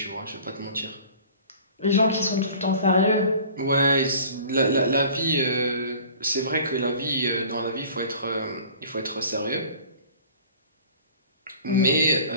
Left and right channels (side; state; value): both; inverted; correlation -0.46